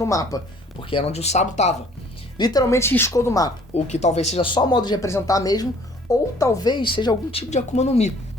mapa, porque era onde o Sabo tava. Literalmente riscou do mapa, o que talvez seja só modo de representar mesmo, ou talvez seja algum tipo de Akuma no Mi.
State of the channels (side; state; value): both; normal; correlation 0.56